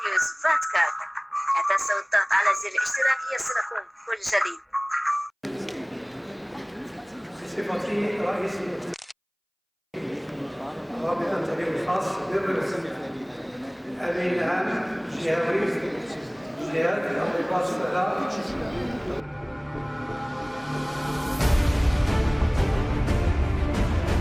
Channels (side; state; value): both; identical; correlation 1.00